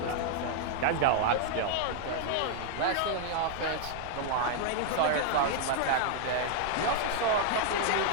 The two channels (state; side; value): different; both; correlation 0.00